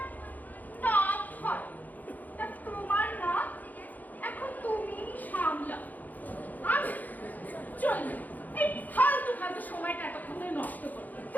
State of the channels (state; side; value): late; right; 0.082 ms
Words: নাক হয়। তা তোমার নাক এখন তুমি সামলাও। আমি চলবে এই ফালতু ফালতু সময়টা এতক্ষণ ধরে নষ্ট করবে